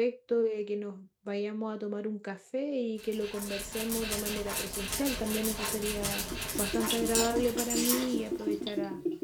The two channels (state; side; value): identical; both; correlation 1.00